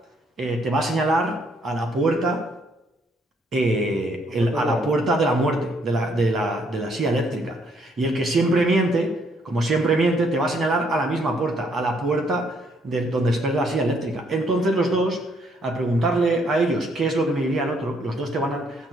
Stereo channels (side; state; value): both; normal; correlation 0.69